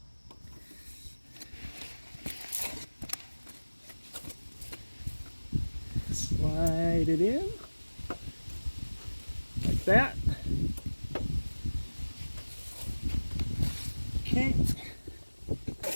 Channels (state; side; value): inverted; both; correlation -1.00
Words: slide it in like that. Okay,